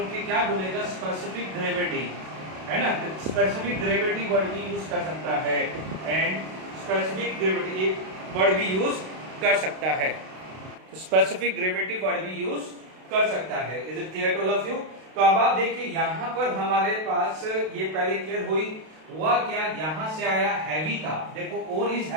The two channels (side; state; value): left; late; 32 ms